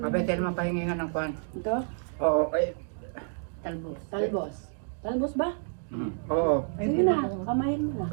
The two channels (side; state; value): left; silent; digital silence